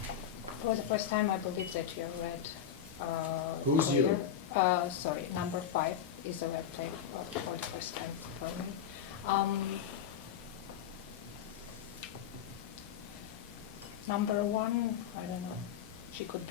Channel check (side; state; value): right; quieter; 8.8 dB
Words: For the first time I believe that you're red. Who's you? Sorry, number 5 is a red player for the first time for me. Number 1, I don't know. She could